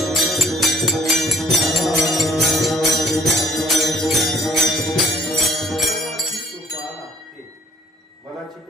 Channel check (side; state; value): both; normal; correlation 0.55